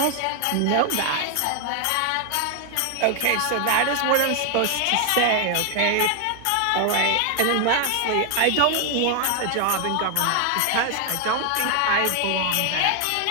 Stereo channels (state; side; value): different; both; correlation 0.00